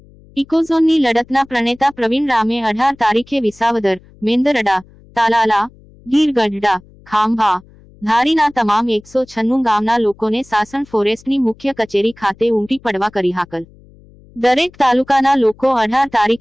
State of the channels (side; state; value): left; noise; hum, 26 dB below the sound